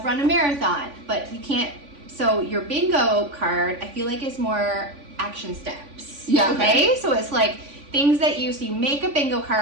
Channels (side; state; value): left; late; 3.5 ms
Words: run a marathon, but you can't. So your bingo card, I feel like, is more action steps. Yeah. Okay. So it's like things that you make a bingo